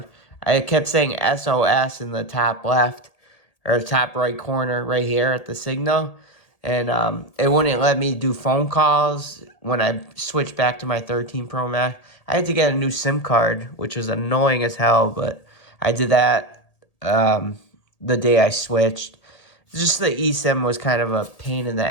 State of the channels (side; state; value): right; late; 1.8 ms